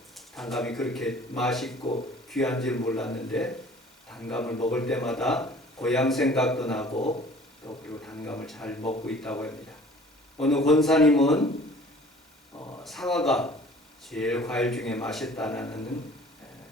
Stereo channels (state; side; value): normal; both; correlation 0.49